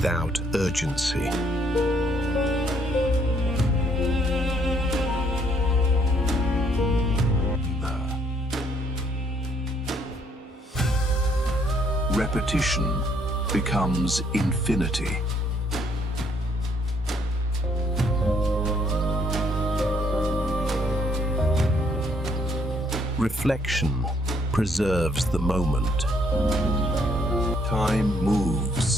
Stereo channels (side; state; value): both; normal; correlation 0.68